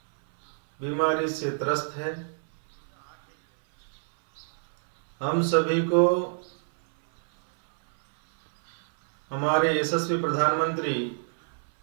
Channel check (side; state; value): left; silent; 60 dB below the other